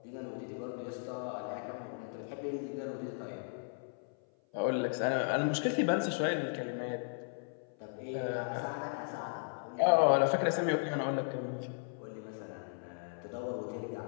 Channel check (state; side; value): silent; right; 54 dB below the other